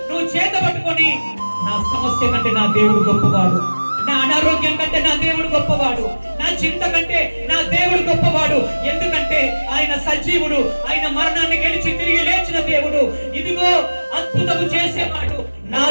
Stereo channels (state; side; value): inverted; both; correlation -1.00